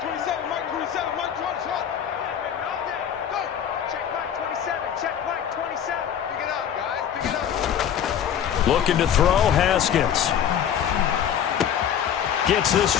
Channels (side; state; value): right; quieter; 9.1 dB